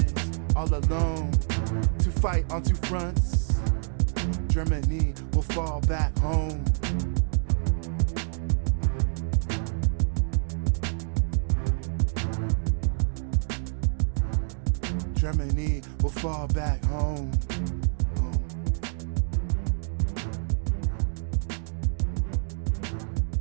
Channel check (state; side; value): silent; left; digital silence